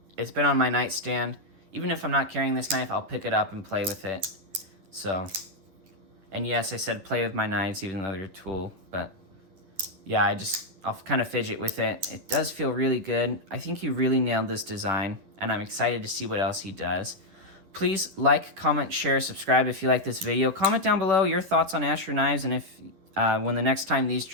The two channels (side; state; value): left; late; 11 ms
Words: It's been on my nightstand. Even if I'm not carrying this knife, I'll pick it up and play with it. So, and yes, I said play with my knives even though they're a tool, but yeah, I'll kind of fidget with it. It does feel really good. I think he really nailed this design, and I'm excited to see what else he does. Please like, comment, share, subscribe if you like this video. Comment down below your thoughts on Asher Knives, and if when the next time these